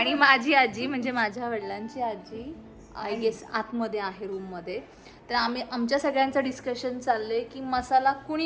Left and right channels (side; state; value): both; identical; correlation 1.00